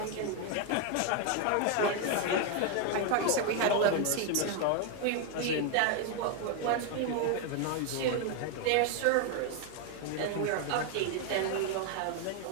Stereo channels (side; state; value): both; different; correlation 0.01